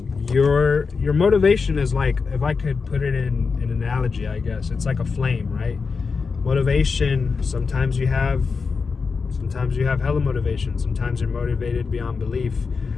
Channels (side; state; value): right; quieter; 5.0 dB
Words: Your motivation is like, if I could put it in an analogy, I guess it's like a flame, right? Motivation, sometimes you have hella motivation. Sometimes you're motivated beyond belief,